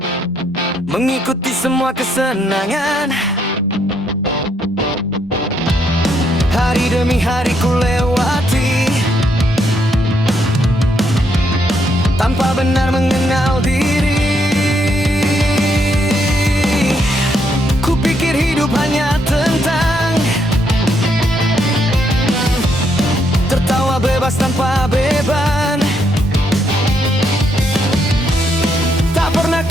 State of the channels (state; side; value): normal; both; correlation 0.75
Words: mengikuti semua kesenangan. Hari demi hari ku lewati, tanpa benar mengenal diri. Ku pikir hidup hanya tentang tertawa bebas tanpa beban. Tak pernah